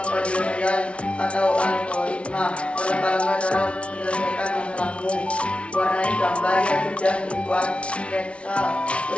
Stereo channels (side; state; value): right; late; 0.061 ms